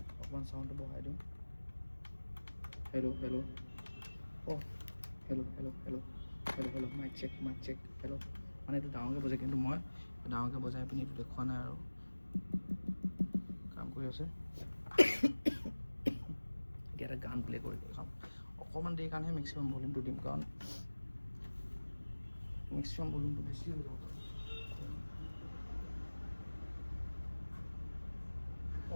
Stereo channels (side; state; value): both; inverted; correlation -1.00